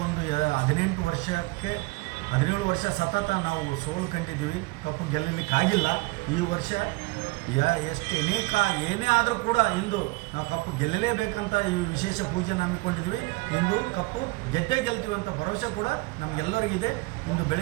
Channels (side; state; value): left; quieter; 24.4 dB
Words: ಒಂದು 17 ವರ್ಷ ಸತತ ನಾವು ಸೋಲು ಕಂಡಿದ್ದೀವಿ, ಕಪ್ಪು ಗೆಲ್ಲಲಿಕ್ಕಾಗಿಲ್ಲ. ಈ ವರ್ಷ ಏನೇ ಆದರೂ ಕೂಡ ಇಂದು ನಾವು ಕಪ್ಪು ಗೆಲ್ಲಲೇಬೇಕಂತ ಈ ವಿಶೇಷ ಪೂಜೆನ ಹಮ್ಮಿಕೊಂಡಿದ್ವಿ. ಇಂದು ಕಪ್ಪು ಗೆಲ್ತೀವಿ ಅಂತ ಭರವಸೆ ಕೂಡ ನಮಗೆಲ್ಲರಿಗಿದೆ. ಇಂದು